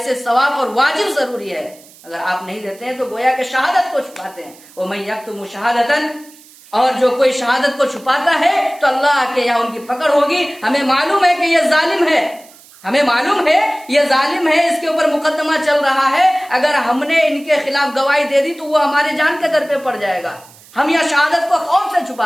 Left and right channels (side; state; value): right; noise; hiss, 24 dB below the sound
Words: सवाब और वाजिब जरूरी है। अगर आप नहीं देते हैं तो गोया के शहादत को छुपाते हैं, वो मैं यक्तुमु शहादतन, और जो कोई शहादत को छुपाता है तो अल्लाह के यहाँ उनकी पकड़ होगी। हमें मालूम है कि यह जालिम है, हमें मालूम है ये जालिम है, इसके ऊपर मुकदमा चल रहा है, अगर हमने इनके खिलाफ गवाही दे दी तो वो हमारे जान के दर पे पड़ जाएगा। हम यह शहादत को खौफ से